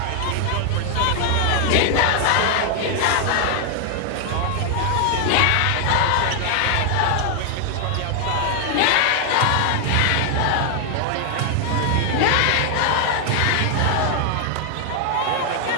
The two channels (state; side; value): different; both; correlation 0.00